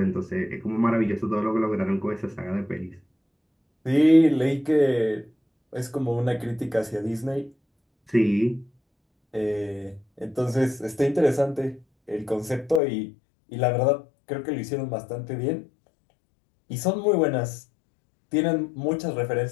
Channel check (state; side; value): drops out; right; at 12.8 s